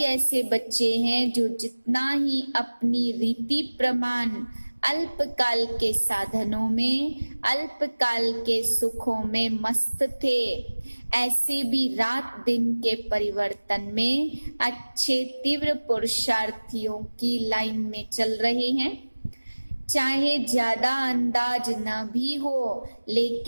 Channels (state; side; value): inverted; both; correlation -1.00